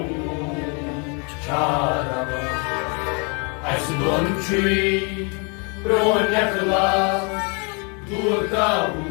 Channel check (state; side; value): quieter; right; 34.5 dB